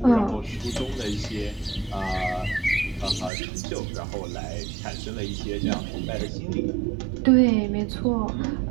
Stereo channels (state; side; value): drops out; left; at 3.3 s